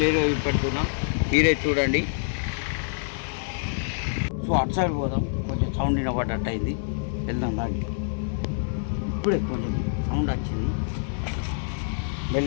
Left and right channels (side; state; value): right; silent; digital silence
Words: పెడుతున్నాం, మీరే చూడండి. సో అటు సైడ్ పోదాం. కొంచెం సౌండ్ వినపడ్డట్టు అయింది, వెళ్దాం దానికి. ఇప్పుడే కొంచెం సౌండ్ వచ్చింది.